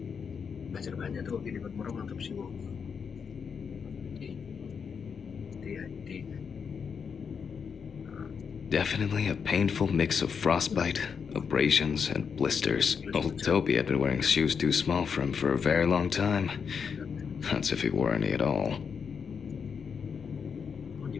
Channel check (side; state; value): right; quieter; 6.4 dB